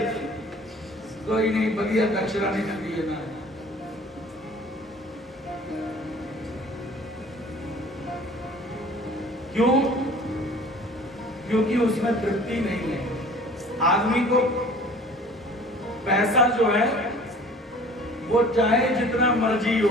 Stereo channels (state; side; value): normal; both; correlation 0.48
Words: कोई नहीं, बढ़िया दक्षिणा नहीं करती है ना। क्यों? क्योंकि उसमें तृप्ति नहीं है। आदमी को पैसा जो है वो चाहे जितना मर्जी